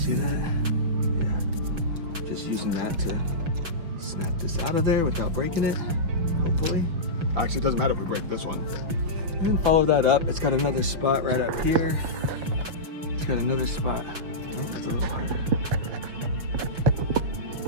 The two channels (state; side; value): late; left; 6.1 ms